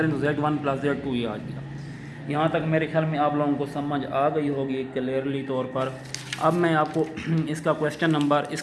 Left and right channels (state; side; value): identical; both; correlation 1.00